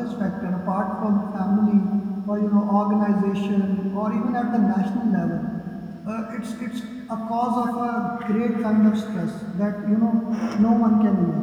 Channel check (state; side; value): identical; both; correlation 1.00